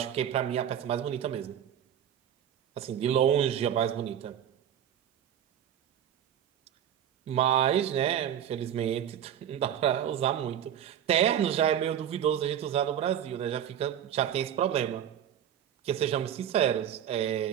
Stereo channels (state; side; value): quieter; left; 9.9 dB